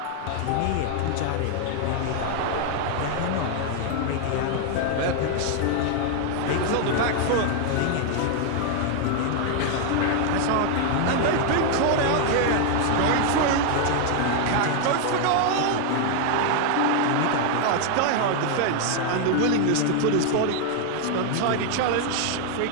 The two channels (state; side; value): different; both; correlation 0.00